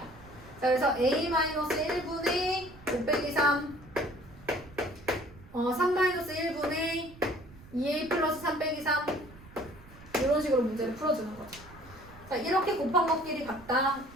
자, 그래서 A-1분의 5 빼기 3 3-1분의 2A 플러스 3 빼기 3 이런 식으로 문제를 풀어주는 거죠. 자, 이렇게 곱한 것끼리 같다.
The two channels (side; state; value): right; noise; rumble, 20 dB below the sound